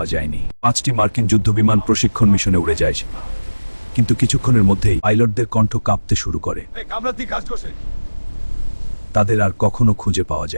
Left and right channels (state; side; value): inverted; both; correlation -1.00